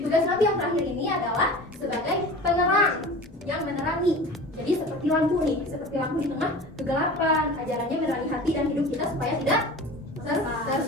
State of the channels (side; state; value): both; normal; correlation 0.36